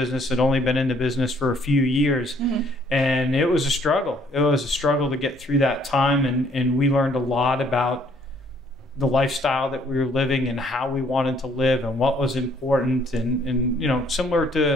had only been in the business for a few years, and it was a struggle. It was a struggle to get through that time, and we learned a lot about the lifestyle that we were living and how we wanted to live and what was important, and similar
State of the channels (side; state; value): both; normal; correlation 0.63